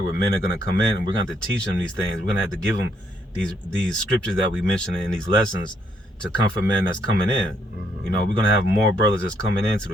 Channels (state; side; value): normal; both; correlation 0.72